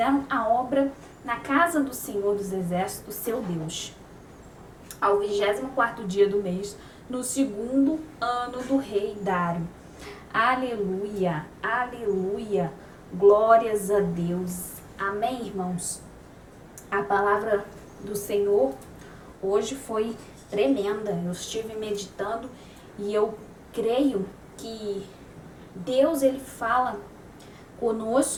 a obra na casa do Senhor dos Exércitos, seu Deus. Ao 24º dia do mês, no 2º ano do rei Dário. Aleluia, aleluia, glórias a Deus. Amém, irmãos? A palavra do Senhor hoje foi tremenda. Eu estive meditando e eu creio que Deus, ele fala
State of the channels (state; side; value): identical; both; correlation 1.00